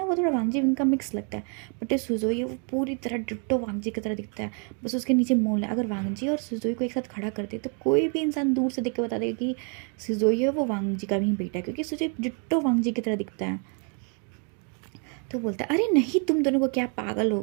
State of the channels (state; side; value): quieter; left; 38.1 dB